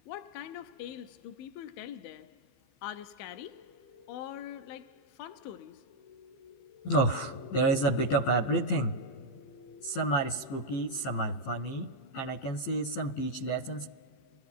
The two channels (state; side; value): late; right; 15 ms